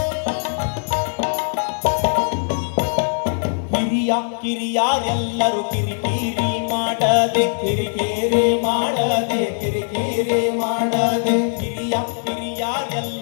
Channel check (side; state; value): right; silent; digital silence